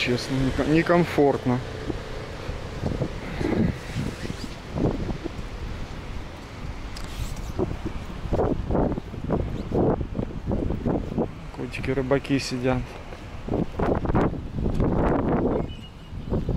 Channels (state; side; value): identical; both; correlation 1.00